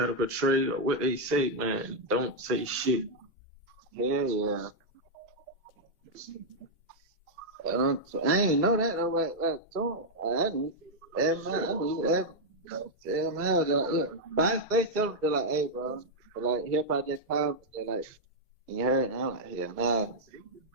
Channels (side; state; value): both; normal; correlation -0.04